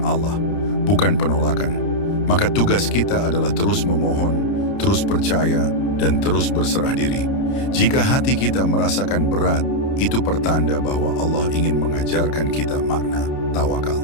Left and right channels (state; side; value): late; right; 30 ms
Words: Allah, bukan penolakan. Maka tugas kita adalah terus memohon, terus percaya, dan terus berserah diri. Jika hati kita merasakan berat, itu pertanda bahwa Allah ingin mengajarkan kita makna tawakal.